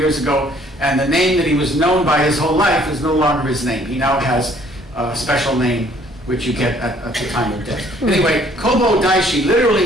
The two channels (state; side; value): normal; both; correlation 0.60